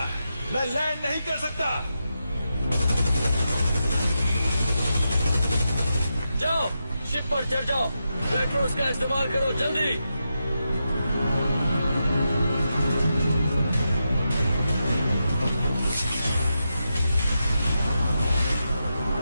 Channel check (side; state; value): both; inverted; correlation -0.87